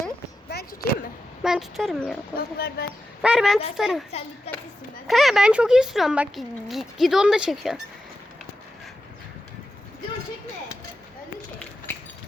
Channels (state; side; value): normal; both; correlation 0.90